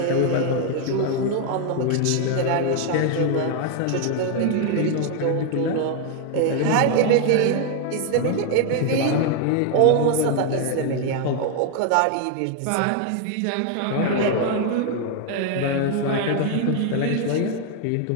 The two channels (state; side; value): different; both; correlation 0.01